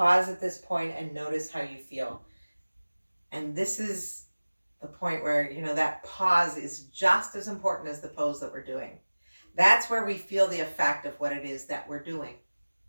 at this point and notice how you feel. And this is the point where, that pause is just as important as the pose that we're doing. That's where we feel the effect of what it is that we're doing.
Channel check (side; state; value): both; inverted; correlation -1.00